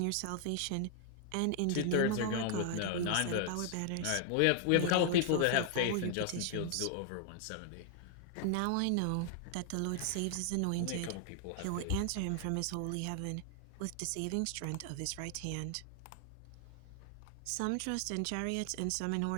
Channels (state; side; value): different; both; correlation 0.00